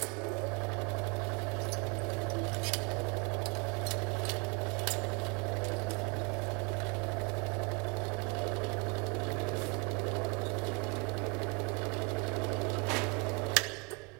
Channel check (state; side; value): quieter; left; 31.4 dB